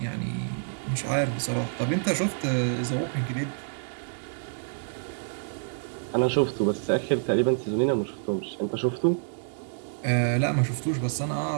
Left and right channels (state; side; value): silent; left; digital silence